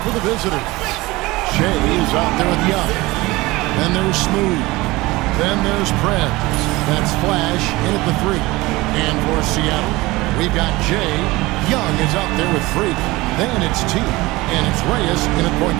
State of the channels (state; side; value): quieter; left; 20.8 dB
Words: for the visitors. Shea is out there with Young. Then there's Smooth. Then there's Prez. That's Flash in at the 3. And for Seattle, we've got Jay. Young is out there with Freak. Then it's T. And it's Reyes in at point